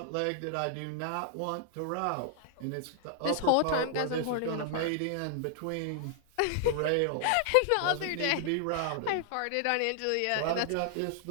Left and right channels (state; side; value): different; both; correlation 0.00